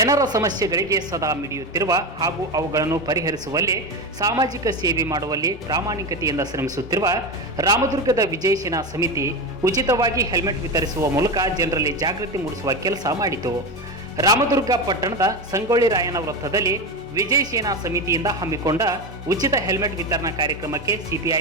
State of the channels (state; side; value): normal; both; correlation 0.19